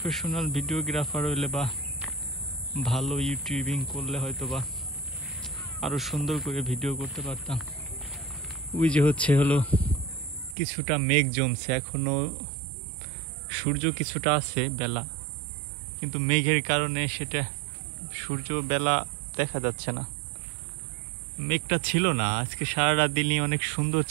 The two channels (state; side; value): drops out; left; at 10.6 s